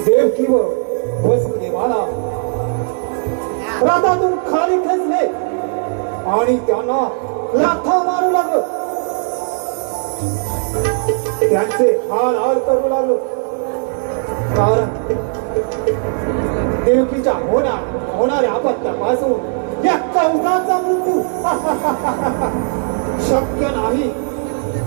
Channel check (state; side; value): silent; left; 57 dB below the other